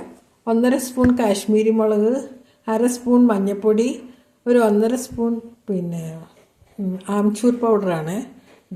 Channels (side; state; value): both; identical; correlation 1.00